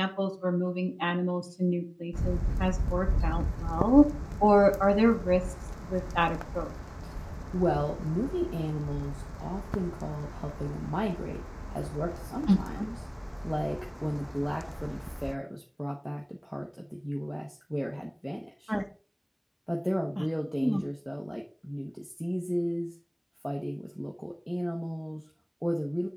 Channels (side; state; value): both; identical; correlation 1.00